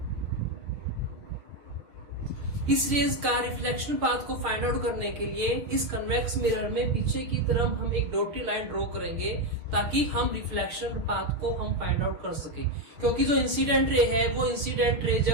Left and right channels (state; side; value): late; left; 6.6 ms